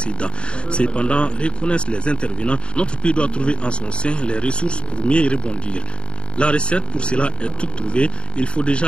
Cependant, reconnaissent les intervenants, notre pays doit trouver en son sein les ressources pour mieux y rebondir. La recette pour cela est toute trouvée. Il faut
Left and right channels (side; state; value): right; late; 0.054 ms